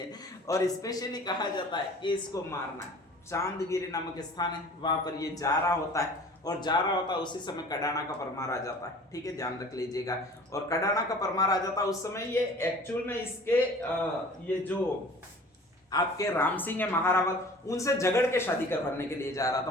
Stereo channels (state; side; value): normal; both; correlation 0.45